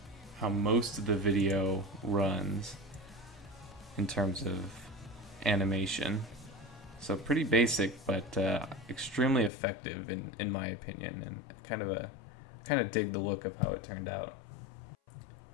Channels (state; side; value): drops out; right; at 9.5 s